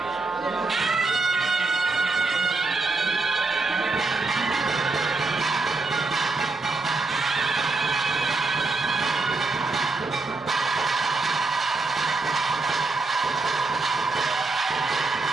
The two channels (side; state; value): left; quieter; 3.5 dB